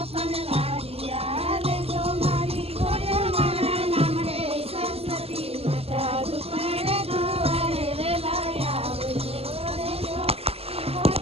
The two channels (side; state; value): left; late; 0.29 ms